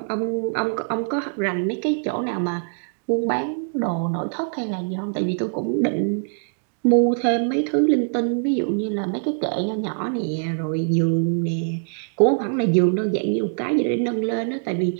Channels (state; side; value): silent; left; digital silence